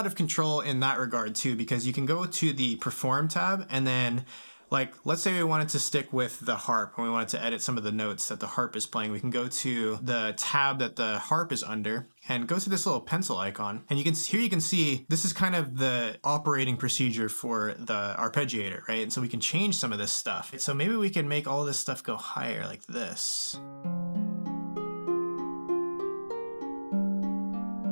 of control in that regard too, because you can go to the Perform tab and then, like, let's say we wanted to stick with the harp and we wanted to edit some of the notes that the harp is playing. We can go to the tab that the harp is under and go to this little pencil icon. And here you can see this is kind of the operating procedure for the arpeggiator, right? And so we can change some of this stuff. So maybe we can make all this stuff go higher like this.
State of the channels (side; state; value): both; inverted; correlation -1.00